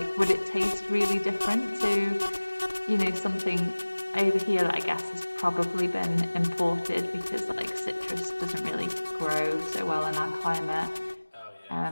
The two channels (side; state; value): both; inverted; correlation -1.00